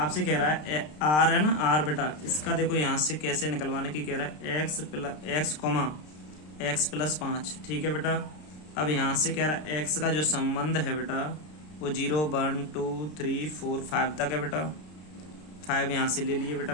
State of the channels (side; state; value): right; late; 33 ms